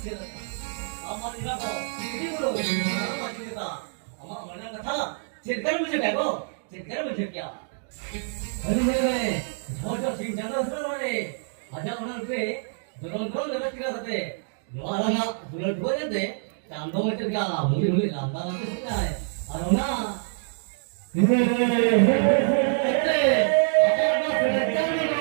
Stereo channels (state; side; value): silent; left; digital silence